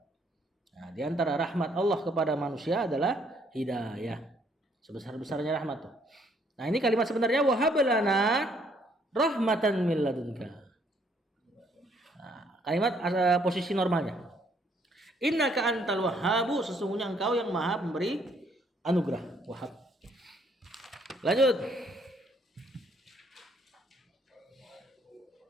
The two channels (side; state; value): both; normal; correlation 0.67